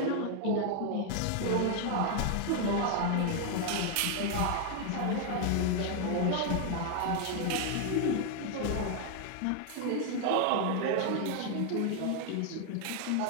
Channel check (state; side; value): different; both; correlation 0.00